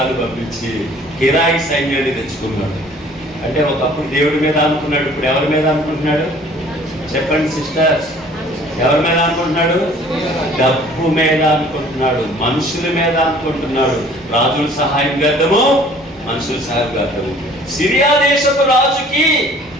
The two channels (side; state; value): both; normal; correlation 0.52